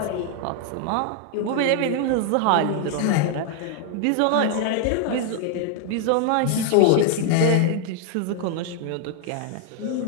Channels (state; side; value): different; both; correlation 0.00